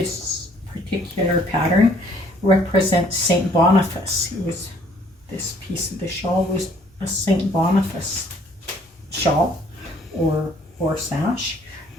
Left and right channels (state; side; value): normal; both; correlation 0.61